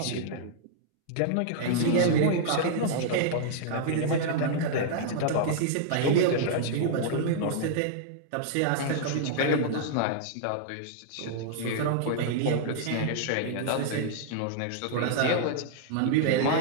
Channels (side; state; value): both; different; correlation -0.01